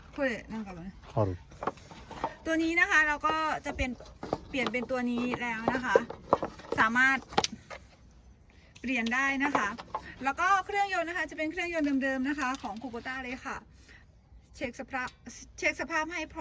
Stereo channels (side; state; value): both; identical; correlation 1.00